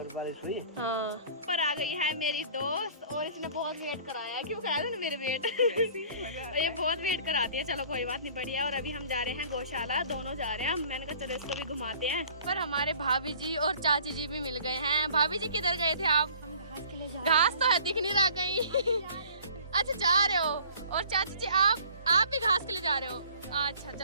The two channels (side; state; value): both; inverted; correlation -0.50